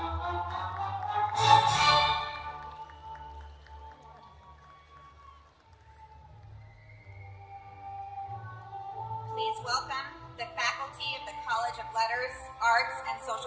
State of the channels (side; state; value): both; identical; correlation 1.00